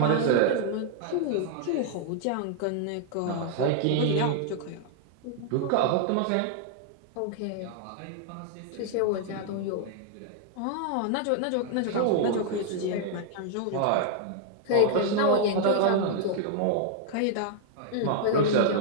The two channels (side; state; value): both; different; correlation 0.00